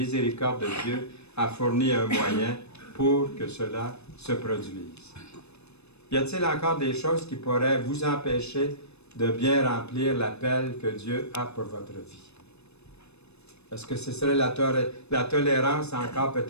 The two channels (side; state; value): right; late; 0.80 ms